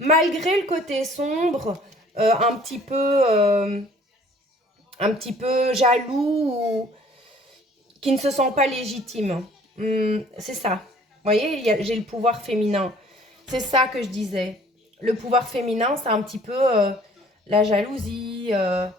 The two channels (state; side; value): normal; both; correlation 0.55